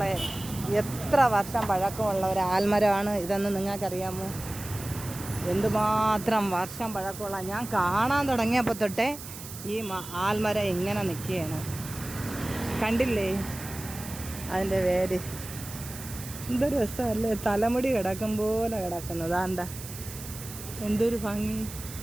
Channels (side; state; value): right; noise; hiss, 12 dB below the sound